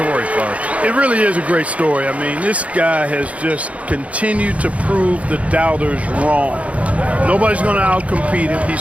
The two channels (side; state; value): left; late; 0.065 ms